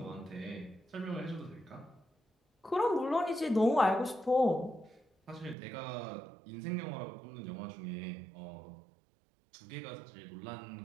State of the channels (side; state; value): left; drops out; at 5.6 s